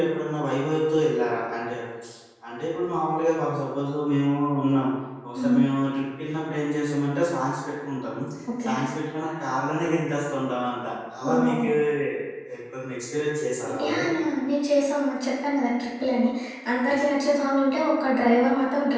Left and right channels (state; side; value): identical; both; correlation 1.00